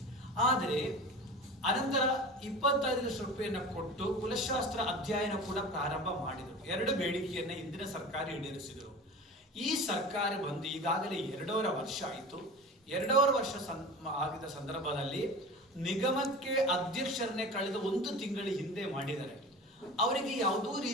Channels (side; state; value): both; normal; correlation 0.34